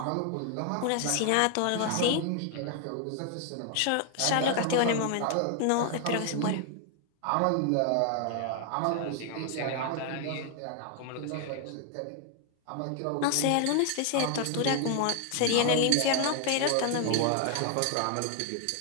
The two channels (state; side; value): different; both; correlation 0.00